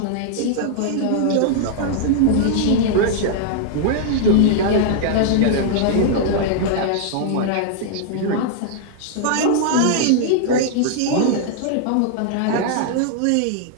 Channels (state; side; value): different; both; correlation -0.01